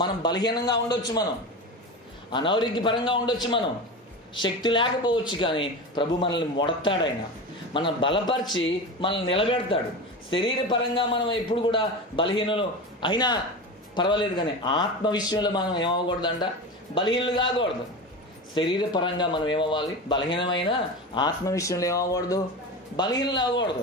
మనం బలహీనంగా ఉండొచ్చు, మనం అనారోగ్యపరంగా ఉండొచ్చు, మనం శక్తి లేకపోవచ్చు, కానీ ప్రభు మనల్ని ముడతాడు. ఆయన మనం బలపరిచి మనల్ని నిలబెడతాడు. శరీరపరంగా మనం ఎప్పుడు కూడా బలహీనలు అయినా పర్వాలేదు, కానీ ఆత్మ విషయంలో మనం ఏమవ్వకూడదంట, బలహీనలు కాకూడదు. శరీరపరంగా మనం ఏమవ్వాలి, బలహీనమైన ఆత్మ విషయంలో ఏమవ్వకూడదు, బలహీనలు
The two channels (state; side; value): normal; both; correlation 0.26